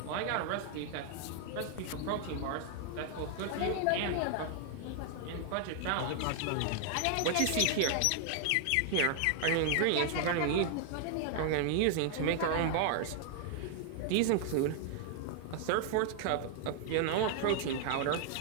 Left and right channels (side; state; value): both; different; correlation 0.00